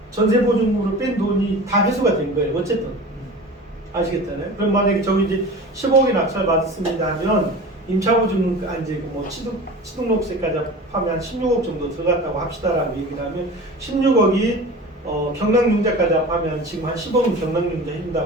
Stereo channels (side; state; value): both; normal; correlation 0.36